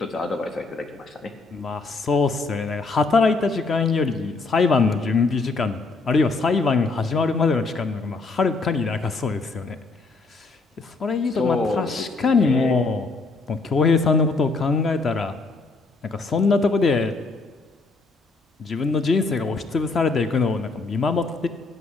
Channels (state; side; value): quieter; right; 3.8 dB